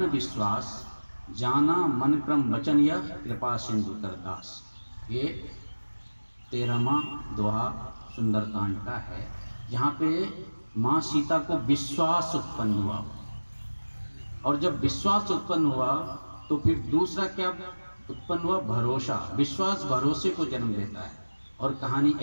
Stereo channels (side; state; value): both; inverted; correlation -1.00